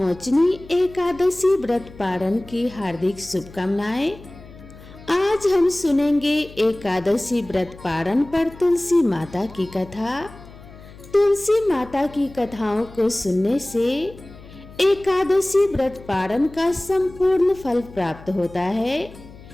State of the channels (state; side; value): noise; left; hum, 19 dB below the sound